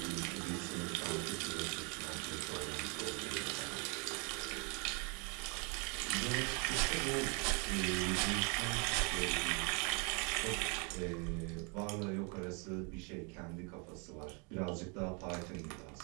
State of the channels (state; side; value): quieter; left; 33.6 dB